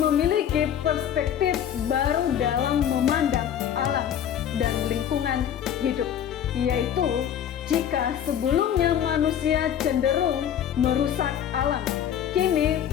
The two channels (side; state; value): right; quieter; 9.6 dB